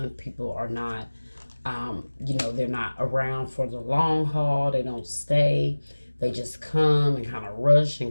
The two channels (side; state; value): both; inverted; correlation -1.00